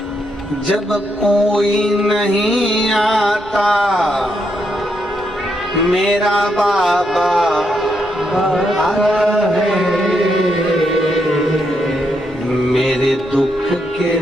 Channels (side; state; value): left; noise; rumble, 24 dB below the sound